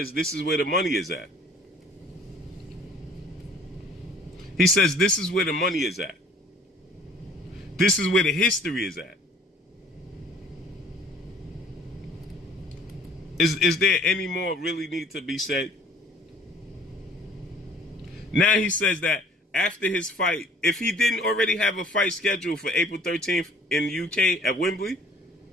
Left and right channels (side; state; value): both; normal; correlation 0.55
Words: this is where the money is at. He says this is where the money is at. This is where the history is at. Is there any more really need to be said? Now he says that after his fight, if he didn't already have a fight scheduled for April 13th in the UK at Wembley,